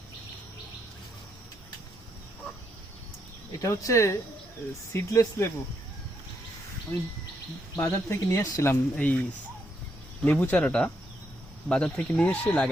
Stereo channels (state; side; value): normal; both; correlation 0.78